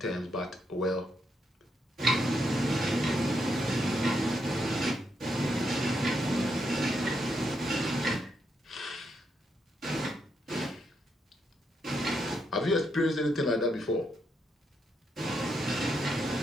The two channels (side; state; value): both; normal; correlation 0.80